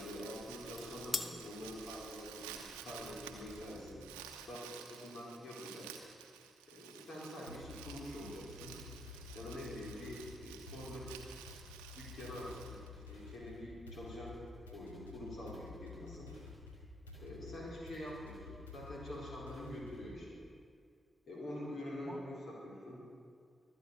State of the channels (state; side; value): normal; both; correlation 0.71